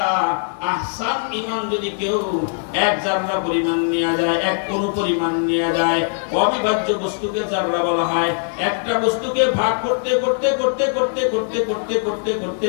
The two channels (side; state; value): right; silent; digital silence